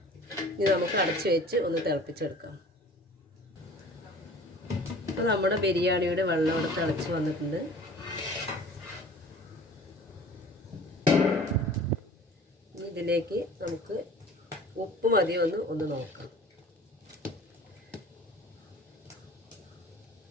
ഇനി നമുക്ക് അടച്ച് വെച്ച് ഒന്ന് തിളപ്പിച്ചെടുക്കാം. അപ്പോൾ നമ്മുടെ ബിരിയാണിയുടെ വെള്ളം ഇവിടെ തിളച്ച് വന്നിട്ടുണ്ട്. ഇതിലേക്ക് നമുക്ക് ഉപ്പ് മതിയോ ഒന്ന് നോക്കാം.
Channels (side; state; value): both; normal; correlation 0.45